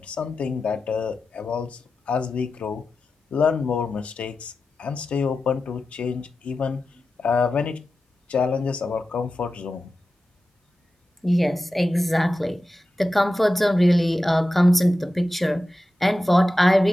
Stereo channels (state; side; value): normal; both; correlation 0.93